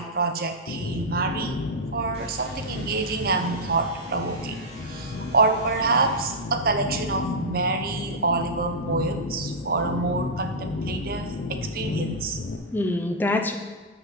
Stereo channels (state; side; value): normal; both; correlation -0.07